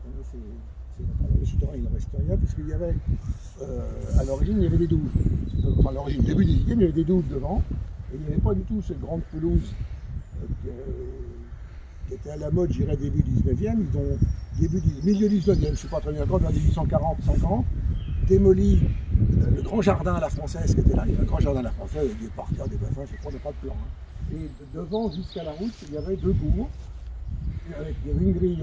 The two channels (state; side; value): identical; both; correlation 1.00